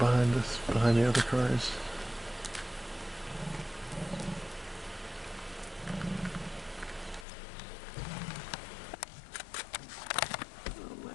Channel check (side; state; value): right; drops out; at 7.2 s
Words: us, behind the other cars. Oh my